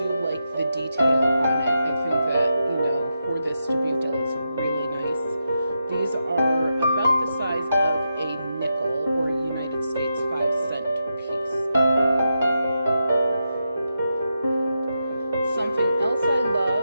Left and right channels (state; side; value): inverted; both; correlation -0.86